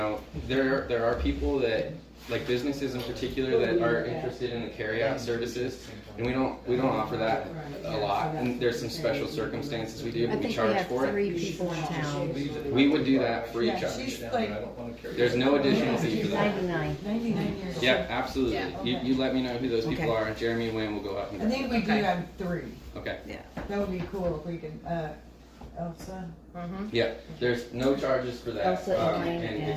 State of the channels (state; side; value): identical; both; correlation 1.00